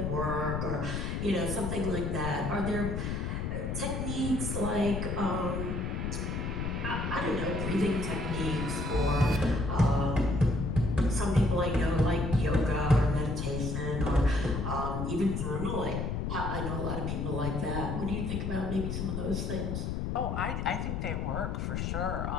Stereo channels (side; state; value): left; noise; rumble, 2 dB below the sound